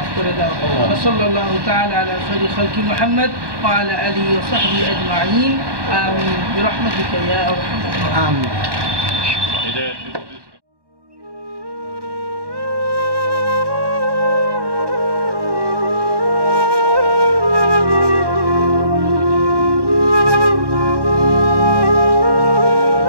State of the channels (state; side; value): late; left; 1.1 ms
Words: করে দাও। সাল্লাল্লাহু তাআলা আলা খায়রি খালকি মুহাম্মদ ওয়া আলা আলিহি ওয়া সাহবিহি আজমাইন। আমিন বিরহমাতিকা ইয়া আরহামার রাহিমিন।